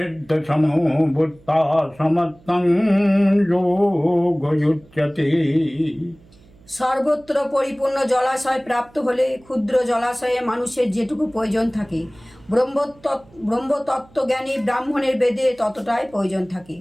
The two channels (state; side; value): noise; right; hum, 27 dB below the sound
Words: बुद्धा समत्तं योगयुज्यते। সর্বত্র পরিপূর্ণ জলাশয় প্রাপ্ত হলে ক্ষুদ্র জলাশয়ে মানুষের যেটুকু প্রয়োজন থাকে, ব্রহ্মতত্ত্বজ্ঞানী ব্রাহ্মণের বেদে ততটাই প্রয়োজন থাকে।